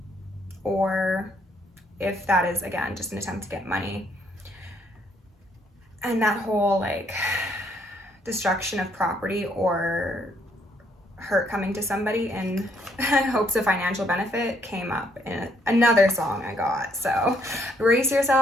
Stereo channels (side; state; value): both; normal; correlation 0.69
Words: or if that is, again, just an attempt to get money. And that whole like destruction of property or hurt coming to somebody in hopes of financial benefit came up in another song I got. So brace